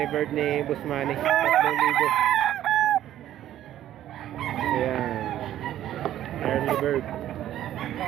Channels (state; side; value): quieter; left; 12.3 dB